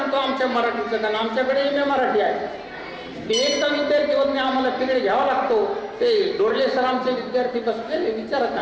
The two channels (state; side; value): identical; both; correlation 1.00